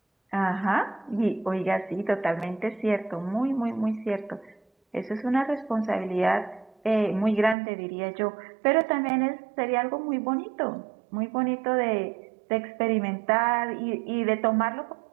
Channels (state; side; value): drops out; left; at 7.6 s